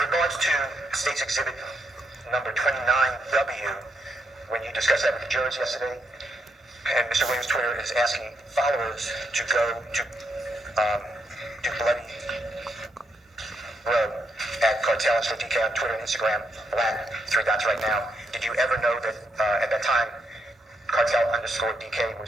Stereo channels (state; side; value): normal; both; correlation 0.79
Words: to State's Exhibit number 29W, when you discussed that with the jurors yesterday, and Mr. Williams' Twitter is asking followers to go to Bloody Road at Cartel and DK on Twitter and Instagram, black, 3 dots right now. Did you ever know that at that time, Cartel underscore DK